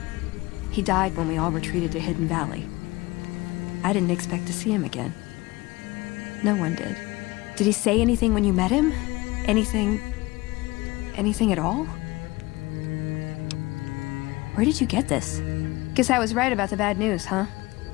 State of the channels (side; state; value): right; quieter; 21.4 dB